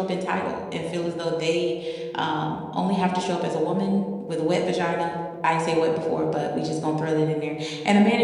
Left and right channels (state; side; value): identical; both; correlation 1.00